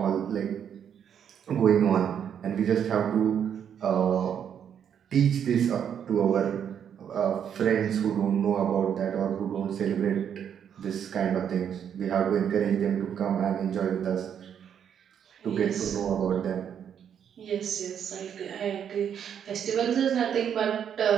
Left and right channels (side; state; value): left; quieter; 8.5 dB